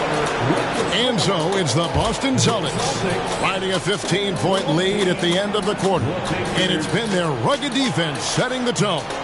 And so it's the Boston Celtics riding a 15-point lead at the end of the quarter. And it's been their rugged defense setting the tone.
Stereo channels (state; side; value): identical; both; correlation 1.00